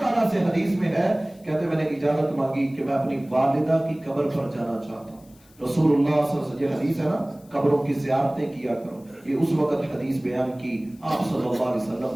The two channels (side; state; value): left; noise; hiss, 29 dB below the sound